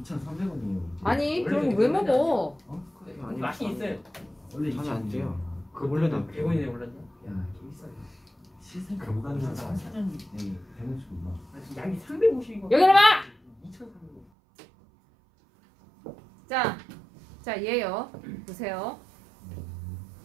아니 원래 그럼 되게 왜 비싸지 먹어? 아니, 맛이 있어요. 원래 잠이 안 돼요. 그 원래는 원래는 100원이네 올랐나? 야, 개 비싸요. 시생 그럼 감당자 사자. 사장이 되는 줄 몰라. 양이 350이고. 여기 봐. 2,300원. 자 얘요. 보세요.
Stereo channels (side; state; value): left; drops out; at 14.2 s